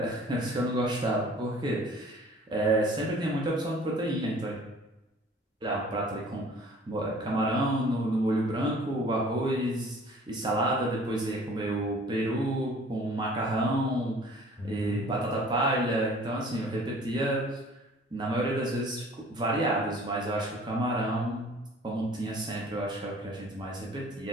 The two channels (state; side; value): normal; both; correlation 0.50